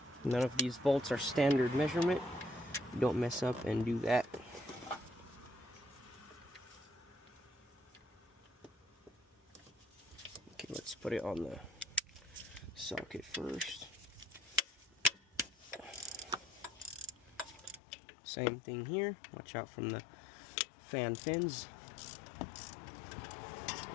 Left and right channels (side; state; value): right; drops out; at 17.8 s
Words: None of these bolts are standard measurement. Don't mess up and do that. Okay, let's put it on the socket first. Same thing here. Watch out from the fan fins.